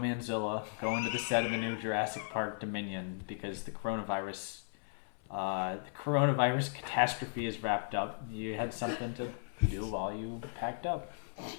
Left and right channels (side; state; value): right; silent; 54 dB below the other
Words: going to the set of the new Jurassic Park Dominion because the coronavirus catastrophe is wrapped up, you had something to do while you packed up.